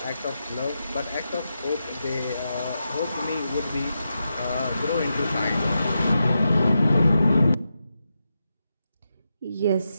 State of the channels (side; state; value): both; inverted; correlation -0.87